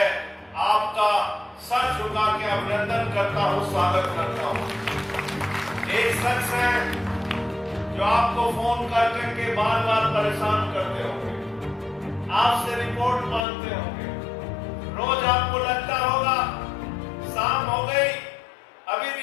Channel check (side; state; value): right; drops out; at 13.5 s